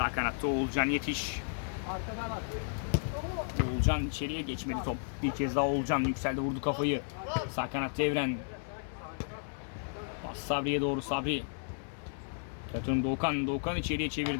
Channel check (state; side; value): silent; right; 55 dB below the other